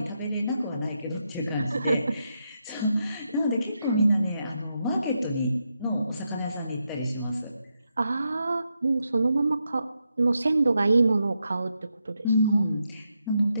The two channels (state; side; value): inverted; both; correlation -0.84